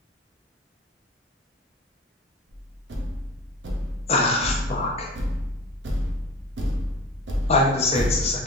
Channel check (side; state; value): both; normal; correlation 0.37